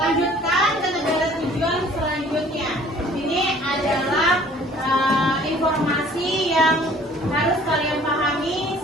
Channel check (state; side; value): normal; both; correlation 0.53